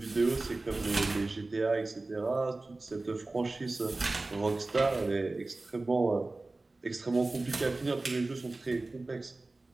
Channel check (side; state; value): left; quieter; 3.2 dB